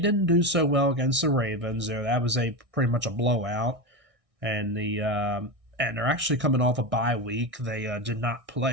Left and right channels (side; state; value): left; late; 1.6 ms